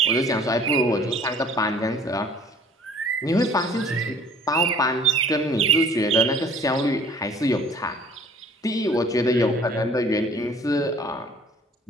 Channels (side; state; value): both; normal; correlation 0.52